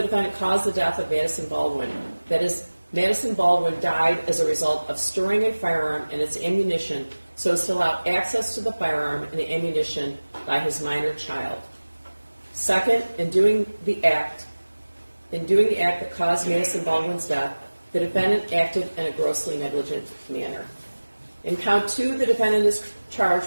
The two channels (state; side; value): inverted; both; correlation -1.00